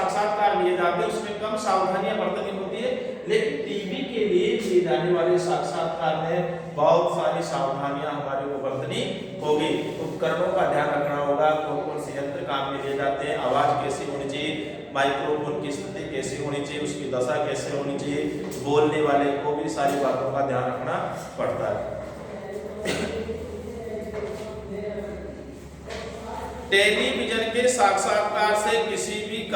लिए जाते हैं उसमें कम सावधानियां बरतनी होती है, लेकिन टीवी के लिए लिए जाने वाले साक्षात्कार में बहुत सारी सावधानियां हमारे को बरतनी होगी। उपकरणों का ध्यान रखना होगा, कौन कौन से यंत्र काम में लिए जाते हैं, आवाज कैसी होनी चाहिए, माइक्रोफोन की स्थिति कैसी होनी चाहिए, उसकी दशा कैसे होनी चाहिए, बोलने वाले को भी सारी बातों का ध्यान रखना पड़ता है। टेलीविजन के साक्षात्कार से किसी भी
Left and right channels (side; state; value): both; identical; correlation 1.00